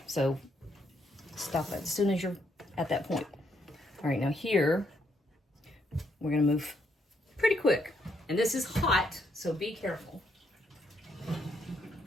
So stop it as soon as you're at that point. All right, now here, we're gonna move pretty quick. And this is hot, so be careful.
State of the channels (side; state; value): both; normal; correlation 0.74